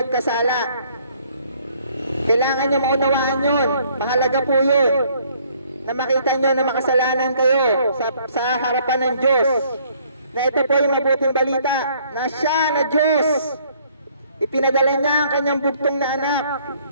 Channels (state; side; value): inverted; both; correlation -0.62